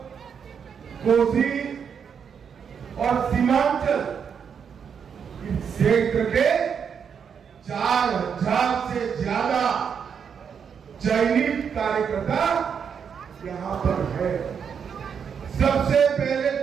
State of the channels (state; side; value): quieter; left; 7.1 dB